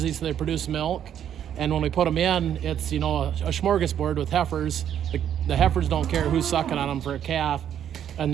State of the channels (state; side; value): quieter; left; 9.7 dB